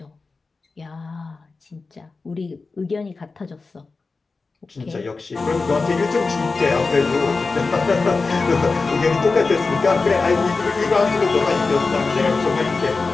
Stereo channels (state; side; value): quieter; right; 4.1 dB